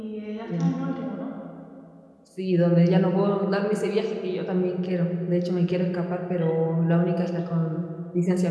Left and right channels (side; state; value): both; identical; correlation 1.00